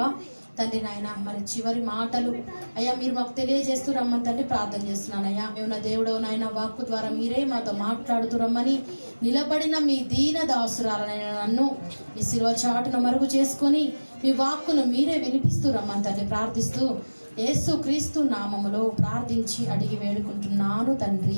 తండ్రి నాయన మరి చివరి మాటలు అయ్యా మీరు మాకు తెలియజేస్తూ రమ్మని తండ్రి ప్రార్థన చేస్తున్నానయ్యా. మేము నా దేవుడు నాయన వాక్కు ద్వారా మీరే మాతో మాట్లాడుతూ రమ్మని నిలబడిన మీ దీన దాసురాలనైనా నన్ను మీ శిలువ చాటును మరుగు చేసుకొని మీ వాక్కును మీరే వినిపిస్తూ రమ్మని తండ్రి ప్రార్థిస్తూ యేసు క్రీస్తు నామములో ప్రార్థించి అడిగి వేడుకుంటున్నాను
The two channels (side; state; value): both; inverted; correlation -1.00